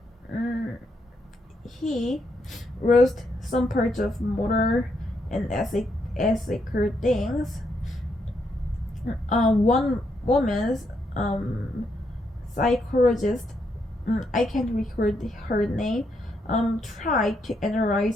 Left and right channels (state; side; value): normal; both; correlation 0.78